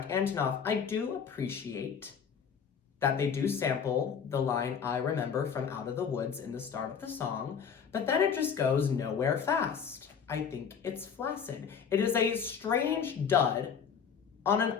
Antonoff. I do appreciate that they do sample the line I remember from Out of the Woods in the start of the song, but then it just goes nowhere fast. I think it's flaccid. It is a strange dud on an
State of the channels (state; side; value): quieter; right; 7.0 dB